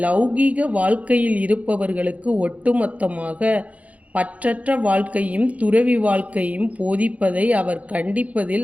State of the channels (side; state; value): left; late; 0.068 ms